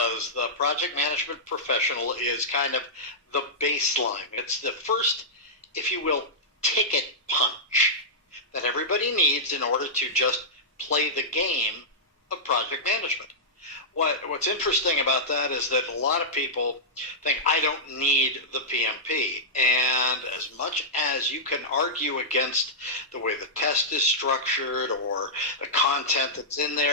the project management professional is kind of the baseline. It's the first, if you will, ticket punch that everybody needs in order to just play the game of project management. What's interesting about that is that a lot of people think, I don't need the PMP. And as much as you can argue against the way the test is structured or the content that's in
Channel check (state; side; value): normal; both; correlation -0.12